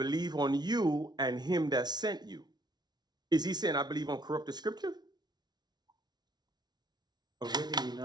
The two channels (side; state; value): left; late; 0.20 ms